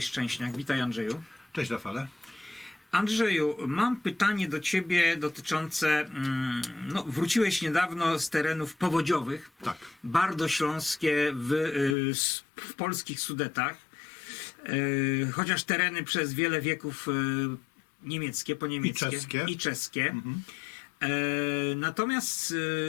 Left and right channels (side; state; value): right; drops out; at 12.0 s